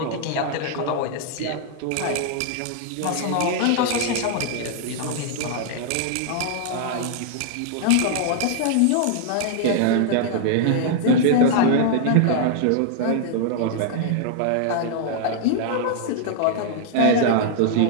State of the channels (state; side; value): different; both; correlation -0.01